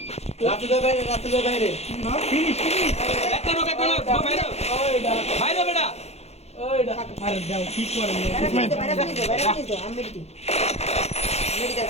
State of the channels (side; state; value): right; late; 0.31 ms